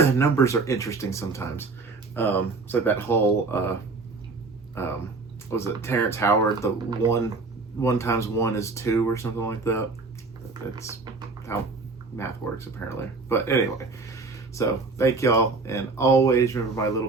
Numbers are interesting sometimes. It's like that whole what was it, Terrence Howard, the 1 times 1 is 2 or something like that. That's how math works apparently. But anyway, so thank y'all, and always remember my little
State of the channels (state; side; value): quieter; left; 3.9 dB